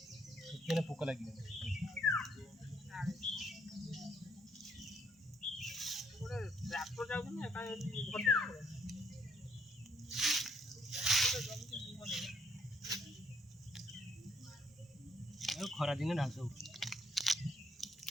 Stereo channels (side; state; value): both; normal; correlation 0.70